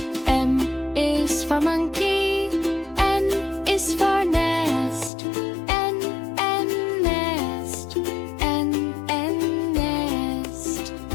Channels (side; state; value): right; drops out; at 5.1 s